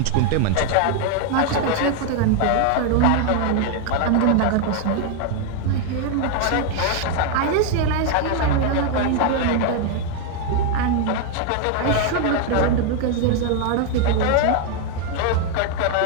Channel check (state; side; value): different; both; correlation 0.00